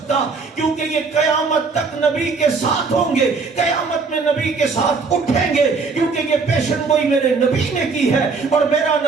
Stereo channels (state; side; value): quieter; left; 4.6 dB